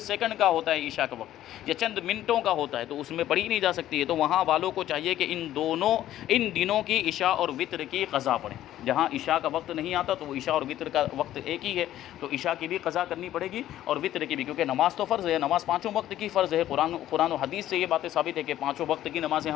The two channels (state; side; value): quieter; right; 12.9 dB